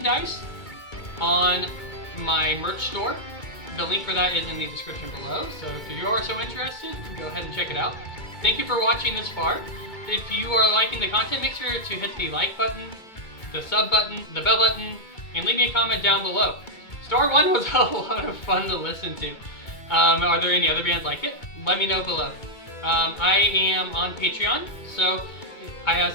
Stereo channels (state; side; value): late; right; 2.3 ms